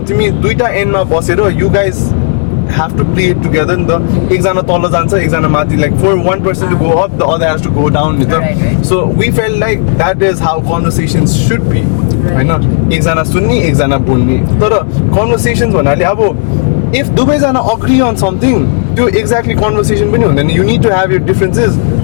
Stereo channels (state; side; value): silent; right; digital silence